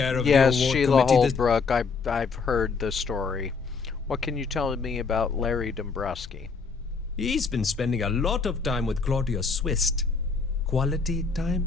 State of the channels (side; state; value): right; quieter; 4.9 dB